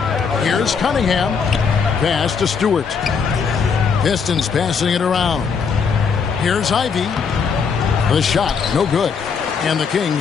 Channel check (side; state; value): right; quieter; 6.0 dB